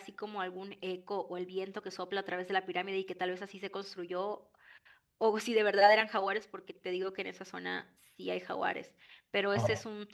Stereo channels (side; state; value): both; identical; correlation 1.00